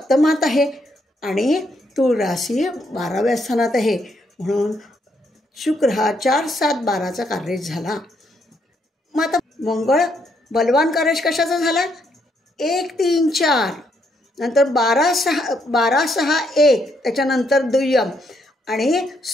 आहे, आणि तूळ राशी 12व्या स्थानात आहे. म्हणून शुक्र हा 4, 7, 12चा कार्य झाला. मग आता मंगळ बलवान कार्येश कशाचा झाला? 1, 3, 4 नंतर 12, 6, 1 त्याच्यानंतर दुय्यम, आणि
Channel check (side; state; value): both; normal; correlation 0.75